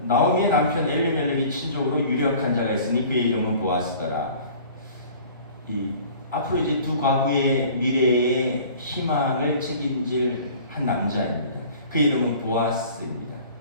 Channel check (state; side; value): inverted; both; correlation -0.47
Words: 나오미의 남편 엘리멜렉이 친족으로 유력한 자가 있으니 그의 이름은 보아스더라. 앞으로 이제 두 과부의 미래의 희망을 책임질 한 남자입니다. 그 이름은 보아스입니다.